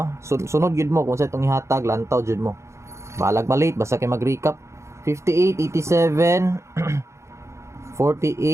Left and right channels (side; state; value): left; late; 0.14 ms